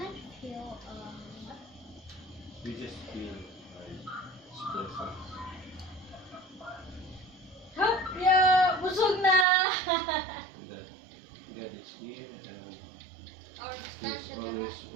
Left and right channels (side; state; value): left; drops out; at 9.5 s